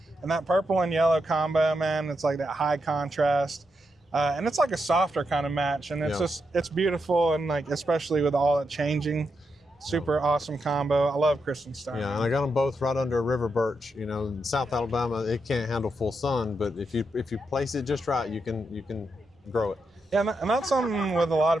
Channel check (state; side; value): normal; both; correlation 0.84